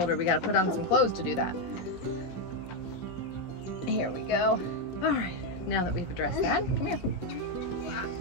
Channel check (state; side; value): late; right; 16 ms